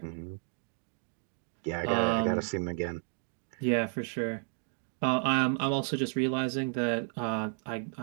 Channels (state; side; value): silent; left; 56 dB below the other